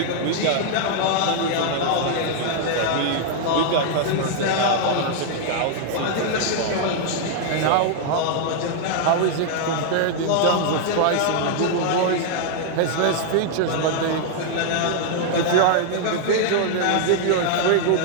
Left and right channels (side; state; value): both; different; correlation 0.00